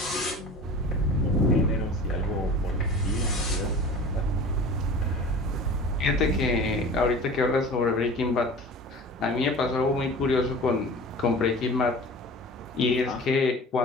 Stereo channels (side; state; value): both; normal; correlation 0.39